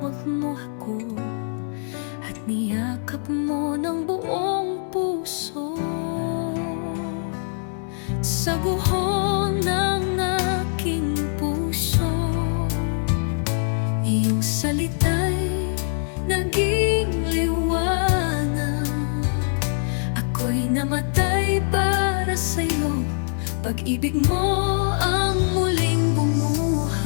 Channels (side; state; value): right; silent; 62 dB below the other